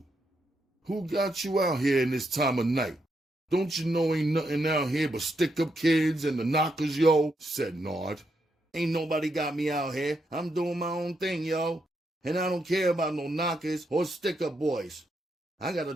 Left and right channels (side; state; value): both; normal; correlation 0.80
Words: "Who got you out here in this time of night? Don't you know ain't nothing out here but stick-up kids and the knockers, yo?" said Nard. "Ain't nobody got me out here. I'm doing my own thing, yo. And I don't care about no knockers or stick-up boys. I gotta